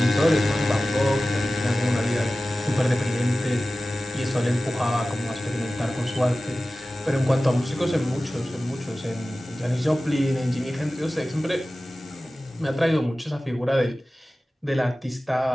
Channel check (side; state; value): both; normal; correlation 0.96